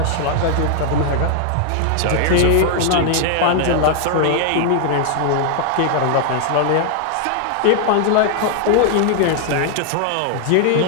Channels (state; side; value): different; both; correlation 0.00